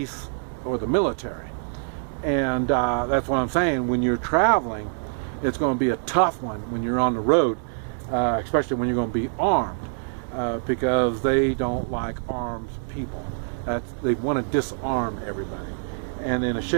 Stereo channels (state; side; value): silent; left; digital silence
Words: or the military. And that's what I'm saying. When you're traveling, it's going to be a tough one when you're on the road, especially when you're going to be armed, because they don't like armed people. They want to disarm everybody. And then a